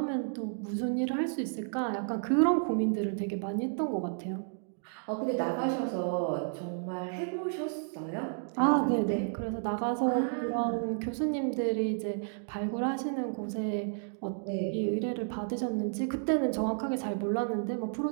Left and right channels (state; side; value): silent; left; digital silence